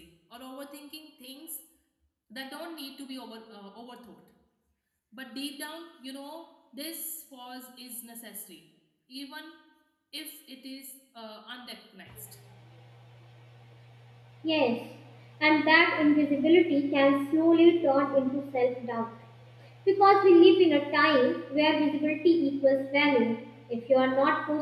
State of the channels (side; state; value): both; identical; correlation 1.00